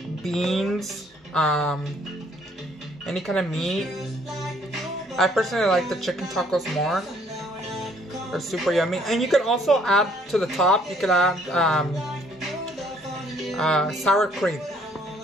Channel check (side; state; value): both; normal; correlation 0.63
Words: beans, any kind of meat. I personally like the chicken tacos more. They're super yummy. And you can also add to the top, you can add sour cream.